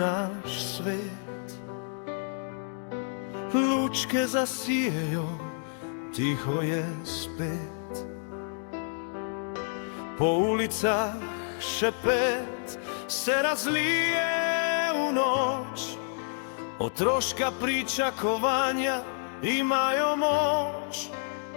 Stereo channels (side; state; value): right; silent; 58 dB below the other